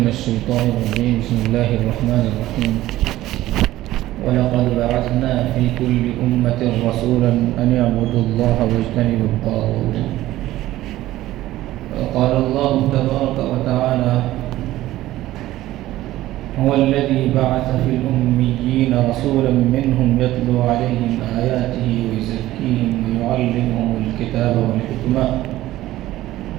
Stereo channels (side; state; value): left; quieter; 15.5 dB